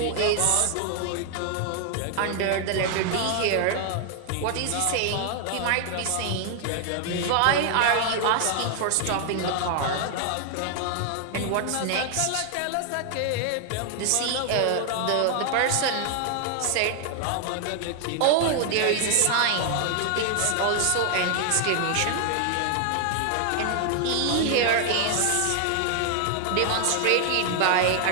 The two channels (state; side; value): different; both; correlation 0.00